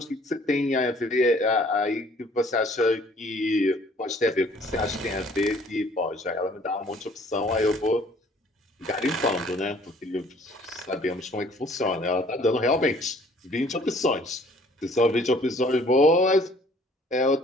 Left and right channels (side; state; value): both; normal; correlation 0.57